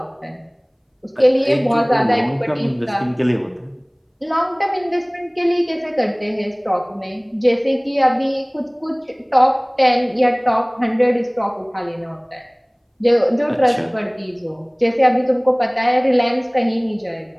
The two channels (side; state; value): both; identical; correlation 1.00